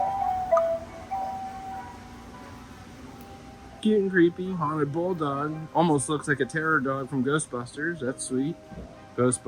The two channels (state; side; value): identical; both; correlation 1.00